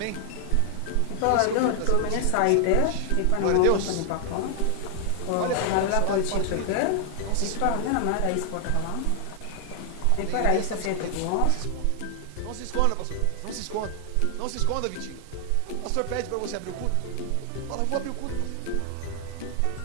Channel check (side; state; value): both; different; correlation 0.00